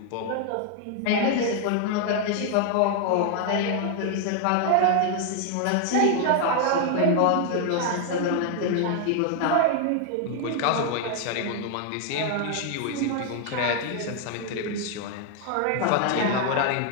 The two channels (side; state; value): both; different; correlation 0.00